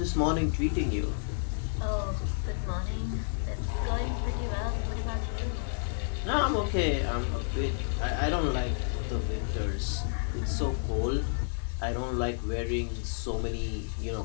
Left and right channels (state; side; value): silent; right; digital silence